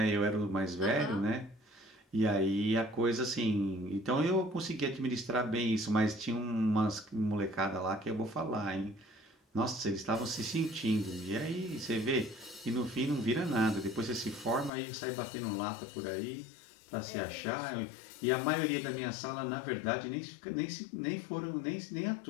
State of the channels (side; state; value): right; drops out; at 14.7 s